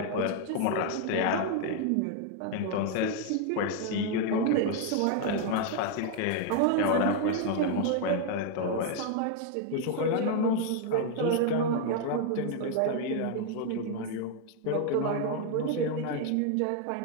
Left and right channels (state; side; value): different; both; correlation 0.00